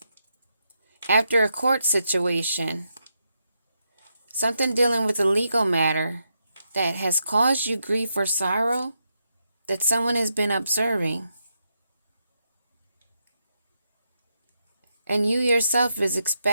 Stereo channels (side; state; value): both; inverted; correlation -0.83